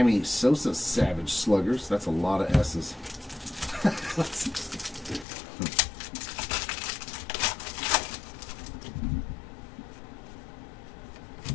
Sosa Savage Sluggers. That's a lot of S's.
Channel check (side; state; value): right; drops out; at 5.2 s